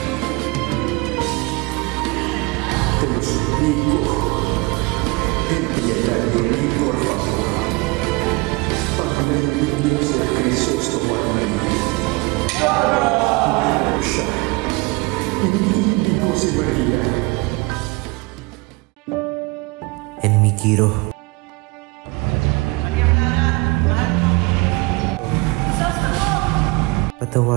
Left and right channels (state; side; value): quieter; left; 25.6 dB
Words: Te lo suplico, piedad de mí, por favor. Amén mi Dios de Crisostomo at Maria. Mahal ko siya. Hindi ko si Maria. And Mikiro.